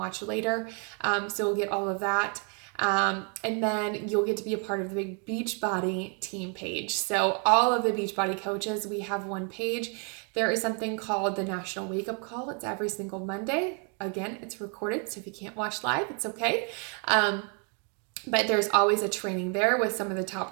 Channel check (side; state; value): left; quieter; 38.6 dB